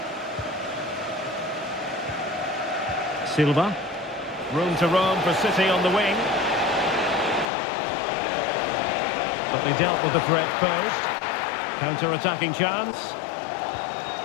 Silva. Room to roam for City on the wing. But they dealt with the threat posed. Counter-attacking chance.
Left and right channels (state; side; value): drops out; right; at 7.5 s